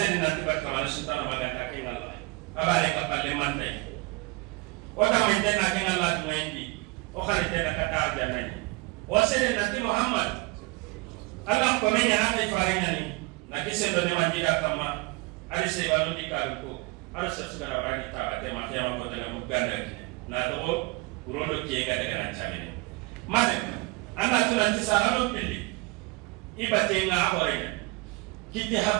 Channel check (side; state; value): left; quieter; 24.7 dB